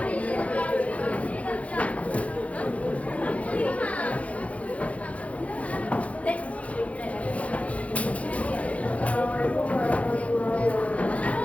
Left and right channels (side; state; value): right; late; 0.065 ms